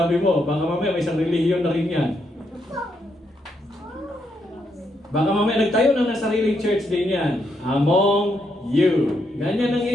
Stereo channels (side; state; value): both; normal; correlation 0.78